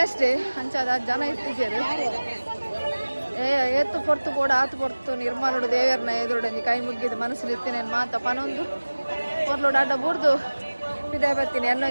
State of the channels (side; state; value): both; inverted; correlation -1.00